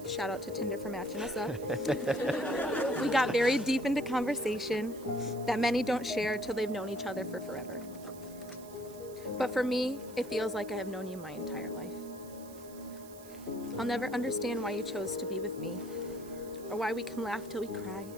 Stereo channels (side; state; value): right; noise; hiss, 20 dB below the sound